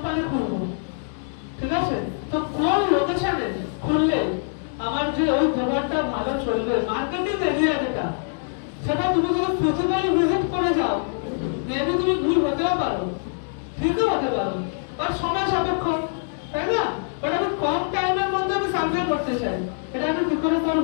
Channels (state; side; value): silent; right; digital silence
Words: খুলবো, ঠিক আছে? তো কোন লোকেশনে খুললে আমার যে ওই দোকানটা ভালো চলবে, মার্কেটিং এরিয়া যেটা, সেটা তুমি যদি ফিজিক্যালি ভিজিট করে যাও মেবি তুমি ভুল হতেও পারো, ঠিকও হতে পারো, বাট সময় সাপেক্ষ, তাই না? বাট আমি কম টাইমের মধ্যে আমি সার্ভে করতে চাই, এটা আমি কি করে